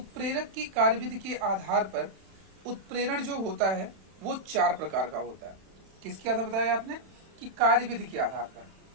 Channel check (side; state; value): left; late; 31 ms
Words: की कार्यविधि के आधार पर उत्प्रेरण जो होता है वो 4 प्रकार का होता है। किसके आधार बताया आपने कि कार्यविधि के आधार पर,